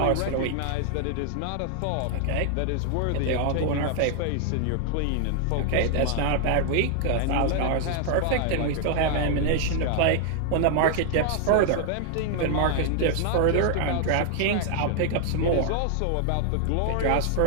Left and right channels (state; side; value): different; both; correlation 0.00